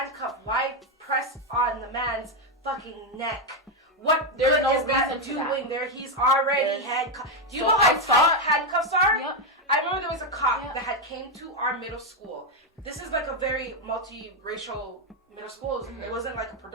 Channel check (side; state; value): both; normal; correlation 0.05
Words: Why press on the man's fucking neck? What There's good no is that reason to doing there? He's already handcuffed. Do you know how tight handcuffs are? Yep. I remember there was a cop that had came to our middle school. This is like a very multiracial middle school. It wasn't like a